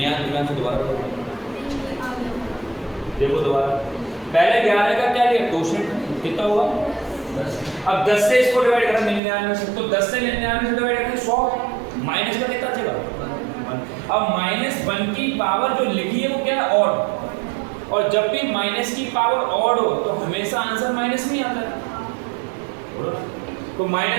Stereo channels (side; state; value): left; drops out; at 9.2 s